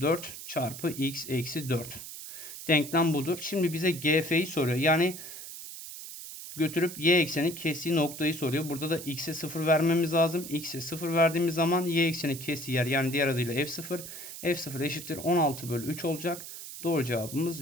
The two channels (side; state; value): right; noise; hiss, 11 dB below the sound